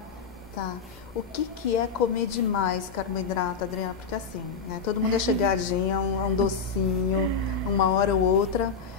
Tá. O que é comer demais carboidrato, Adriana? Porque assim, né? Todo mundo é chegadinho a um docinho, uma hora ou outra,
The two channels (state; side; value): quieter; right; 5.4 dB